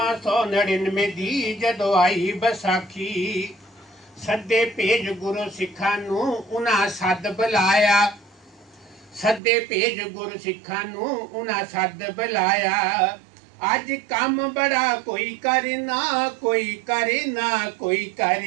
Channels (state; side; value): drops out; left; at 9.4 s